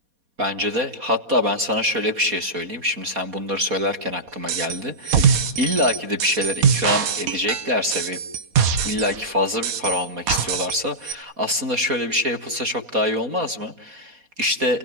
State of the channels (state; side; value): late; left; 4.2 ms